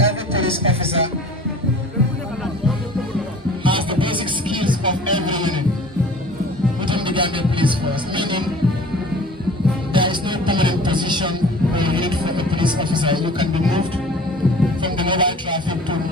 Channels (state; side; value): normal; both; correlation 0.45